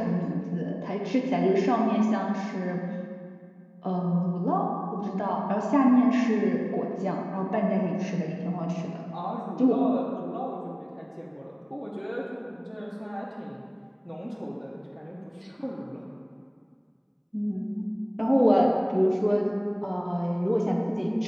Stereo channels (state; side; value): identical; both; correlation 1.00